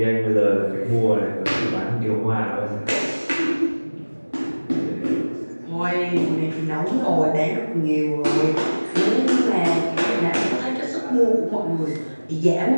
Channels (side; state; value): both; inverted; correlation -1.00